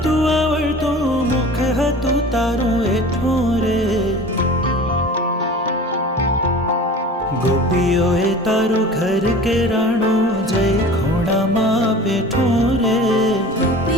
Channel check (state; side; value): normal; both; correlation 0.39